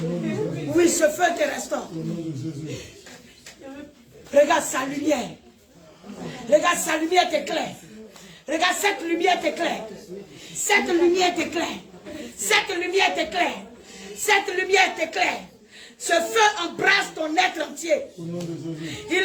Oui, ce feu te restaure. Regarde sa lumière. Regarde sa lumière t'éclaire. Regarde cette lumière t'éclaire. Cette lumière t'éclaire. Cette lumière t'éclaire. Cette lumière t'éclaire. Ce feu embrasse ton être entier.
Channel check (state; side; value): identical; both; correlation 1.00